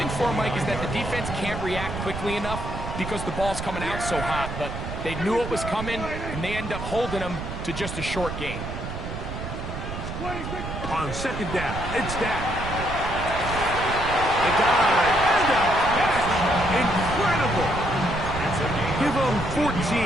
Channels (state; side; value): noise; right; rumble, 7 dB below the sound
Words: for, Mike, is that the defense can't react quickly enough because the ball's coming out so hot. But they knew it was coming, and they end up holding them to just a short gain. On second down, it's Dak. The guy. Incredible! Give them